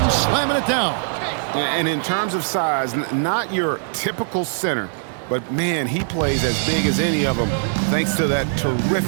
slamming it down. And in terms of size, not your typical center, but man, he plays as big as any of them thanks to that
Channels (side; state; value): left; silent; digital silence